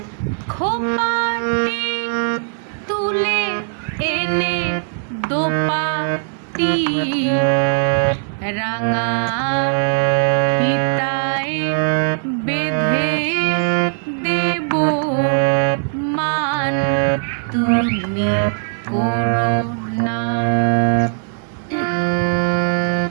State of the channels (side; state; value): left; silent; digital silence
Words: খোপাটি তুলে এনে দোপাটি রাঙা ফিতায় বেঁধে দেব মান তুমি করো না।